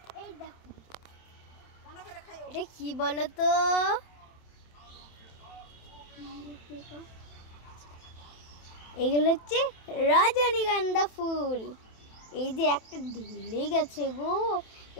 এই দেখো, এটা কি বলো তো? এগুলো হচ্ছে রজনীগন্ধা ফুল। এই যে একটা ঢুলে গেছে গো,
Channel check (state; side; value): late; right; 27 ms